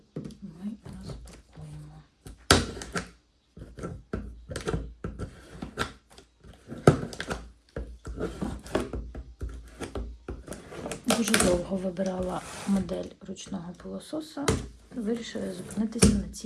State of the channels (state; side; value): identical; both; correlation 1.00